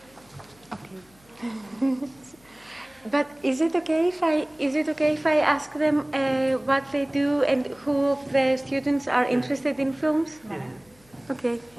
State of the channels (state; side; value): noise; left; hum, 30 dB below the sound